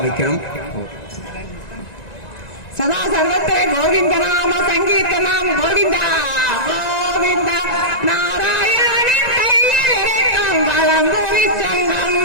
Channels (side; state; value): right; late; 1.9 ms